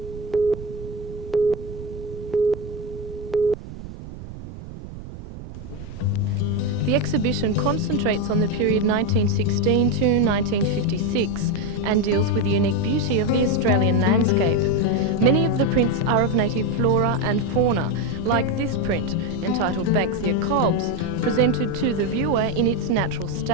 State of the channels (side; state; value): right; noise; rumble, 12 dB below the sound